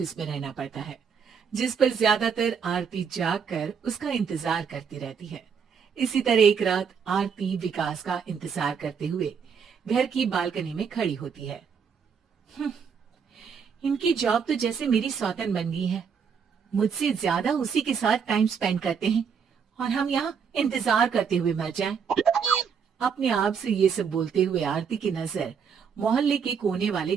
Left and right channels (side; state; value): left; quieter; 6.6 dB